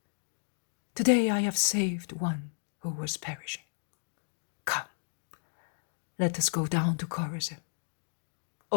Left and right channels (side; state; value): right; silent; digital silence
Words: today I have saved one who was perishing. Come, let us go down to Chorazin.